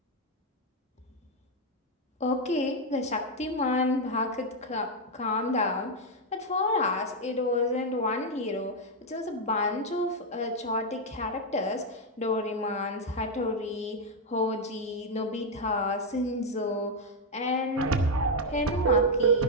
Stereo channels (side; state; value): both; normal; correlation 0.02